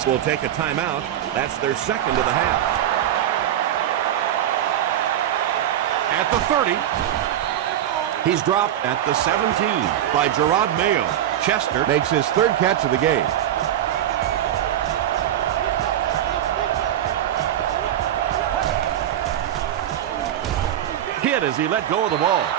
will take a timeout. That's their second of the half. At the 30. He's dropped at the 17 by Gerard Mayo. Chester makes his third catch of the game. Hit as he let go of the ball.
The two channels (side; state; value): left; quieter; 11.3 dB